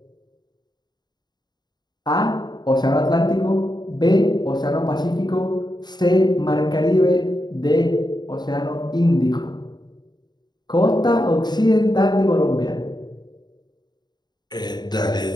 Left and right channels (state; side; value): late; right; 0.20 ms